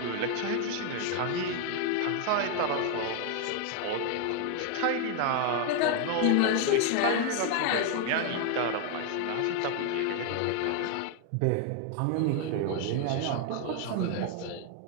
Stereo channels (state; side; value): different; both; correlation 0.00